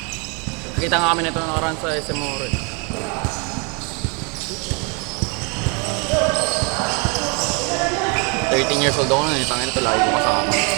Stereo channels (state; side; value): quieter; left; 33.3 dB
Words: Nakita nga kami nito nakaraan sa SM Ore. 13 years old ako nun, tangin ito, lagi ko kasama.